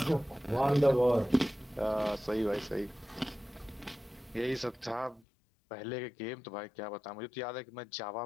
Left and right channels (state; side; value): drops out; right; at 5.2 s